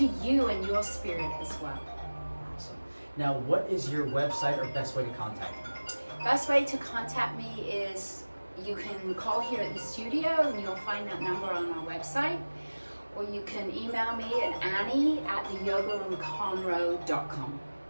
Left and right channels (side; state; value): both; inverted; correlation -1.00